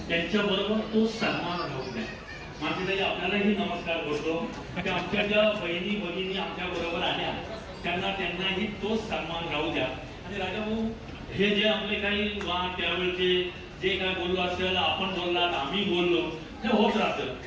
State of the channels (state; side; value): identical; both; correlation 1.00